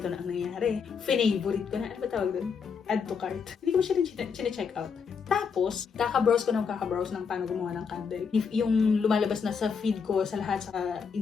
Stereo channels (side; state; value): right; quieter; 6.0 dB